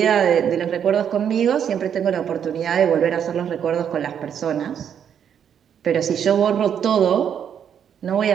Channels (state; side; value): quieter; left; 8.5 dB